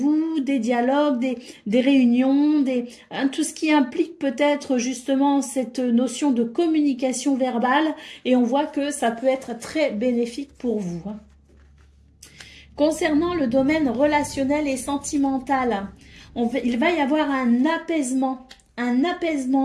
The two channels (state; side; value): identical; both; correlation 1.00